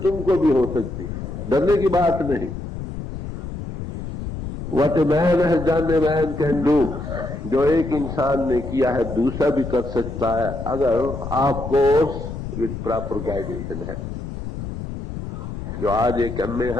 भी हो सकती है, डरने की बात नहीं। What a man has done a man can do, जो एक इंसान ने किया है दूसरा भी कर सकता है, अगर of course with proper guidance and help. जो आज एक एमए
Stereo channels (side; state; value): left; noise; rumble, 8 dB below the sound